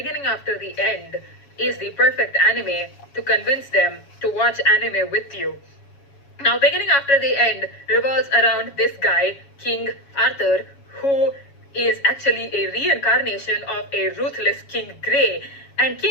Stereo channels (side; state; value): right; late; 7.2 ms